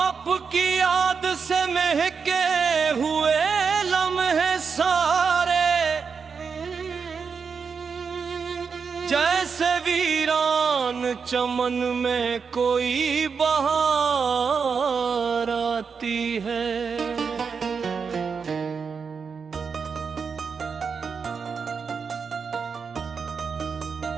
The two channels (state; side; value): quieter; left; 5.7 dB